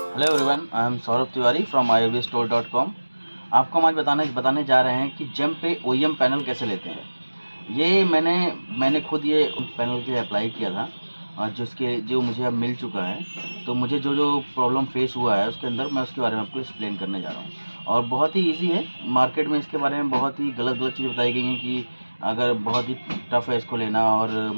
Hello everyone, I am Saurabh Tiwari from iovstore.com। आपको हम आज बताने जा रहे हैं कि जेम पे OEM पैनल कैसे लेते हैं। ये मैंने खुद ये पैनल के लिए अप्लाई किया था और जो मुझे अब मिल चुका है। तो मुझे जो प्रॉब्लम फेस हुआ है उसके अंदर मैं उसके बारे में आपको एक्सप्लेन करने जा रहा हूँ। और बहुत ही ईजी है। मार्केट में इसके बारे में बहुत ही गलत चीज़ें बताई गई हैं कि अगर बहुत ही टफ़ है इसको लेना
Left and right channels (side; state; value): both; inverted; correlation -1.00